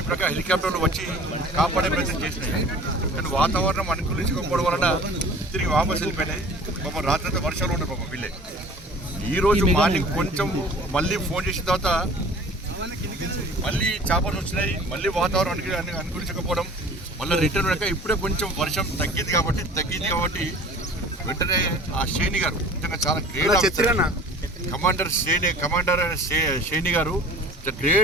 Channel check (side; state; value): both; normal; correlation 0.45